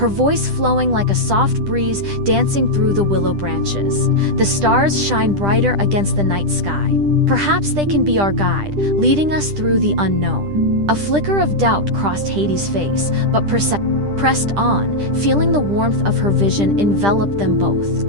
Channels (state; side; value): late; left; 10 ms